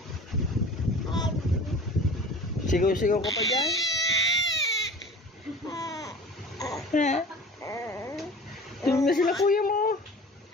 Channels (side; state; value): both; normal; correlation 0.41